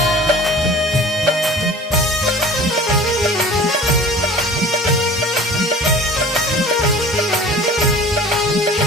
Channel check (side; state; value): both; normal; correlation 0.43